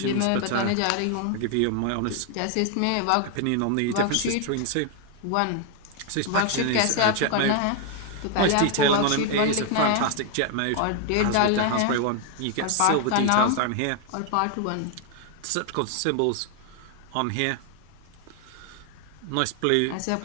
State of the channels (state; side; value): different; both; correlation 0.01